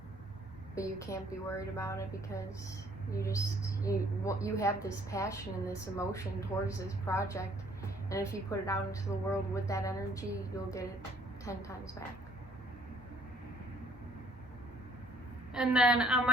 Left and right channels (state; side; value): normal; both; correlation 0.61